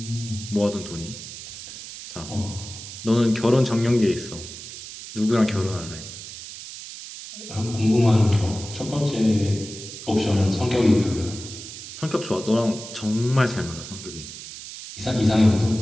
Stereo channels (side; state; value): right; noise; hiss, 12 dB below the sound